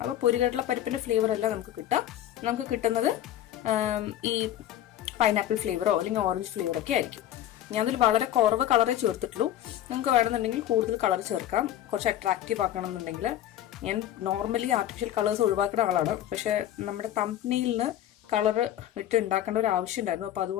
അപ്പൊ പൊരികടല പരിപ്പിന്റെ ഫ്ലേവർ അല്ല നമുക്ക് കിട്ടുക. നമുക്ക് കിട്ടുന്നത് ഈ പൈനാപ്പിൾ ഫ്ലേവറോ അല്ലെങ്കിൽ ഓറഞ്ച് ഫ്ലേവറോ ഒക്കെ ആയിരിക്കും. ഞാൻ അതിൽ വളരെ കുറവ് കളറേ ചേർത്തിട്ടുള്ളൂ. നിങ്ങൾക്ക് വേണമെന്നുണ്ടെങ്കിൽ കൂടുതൽ കളർ ചേർക്കാം. കുറച്ച് അട്രാക്റ്റീവ് ആക്കണമെന്നുണ്ടെങ്കിൽ. ഞാൻ നോർമലി ആർട്ടിഫിഷ്യൽ കളേഴ്സ് ഒഴിവാക്കുന്ന ആളാണ്. പക്ഷെ നമ്മുടെ തംബ്നെയിലിന് കളർ ഇട്ട് ഉണ്ടാക്കേണ്ട ഒരു ആവശ്യം ഉണ്ടായിരുന്നു. അപ്പൊ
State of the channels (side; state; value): right; quieter; 12.2 dB